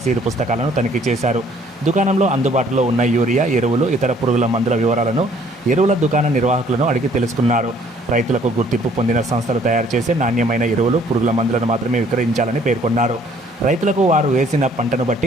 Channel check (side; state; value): both; normal; correlation 0.60